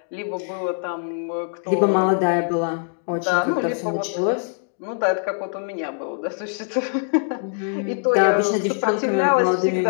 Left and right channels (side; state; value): right; silent; digital silence